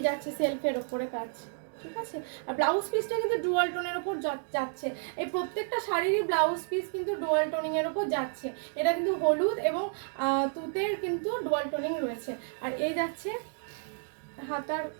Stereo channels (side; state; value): left; silent; 57 dB below the other